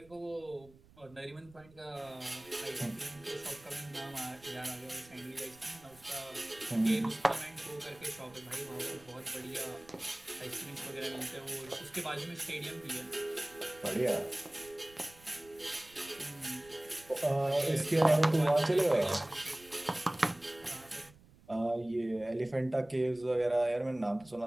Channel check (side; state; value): right; noise; rumble, 25 dB below the sound